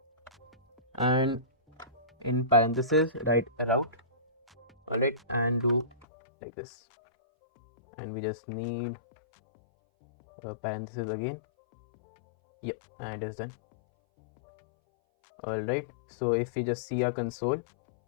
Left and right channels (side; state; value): right; drops out; at 6.1 s